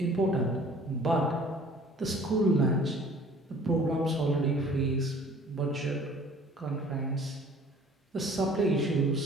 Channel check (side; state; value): both; normal; correlation 0.51